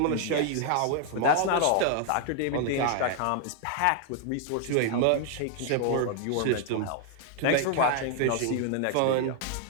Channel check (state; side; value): different; both; correlation 0.00